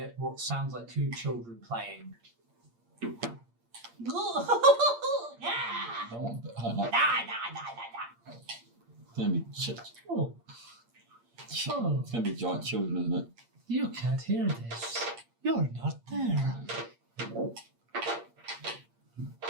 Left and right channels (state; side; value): late; left; 8.6 ms